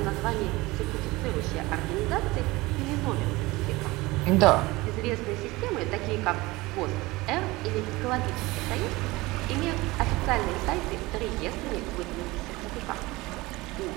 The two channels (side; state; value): left; quieter; 21.1 dB